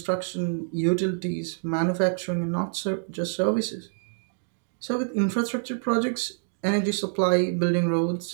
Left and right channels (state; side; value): silent; left; digital silence